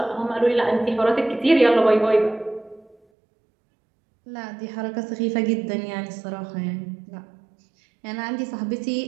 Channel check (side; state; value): left; drops out; at 3.0 s